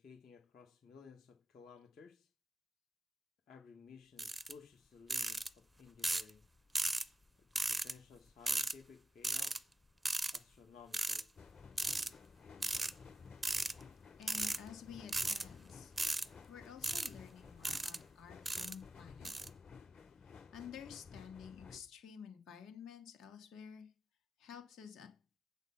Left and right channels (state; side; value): normal; both; correlation 0.95